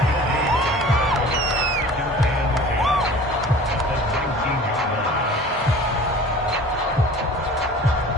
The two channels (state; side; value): normal; both; correlation 0.43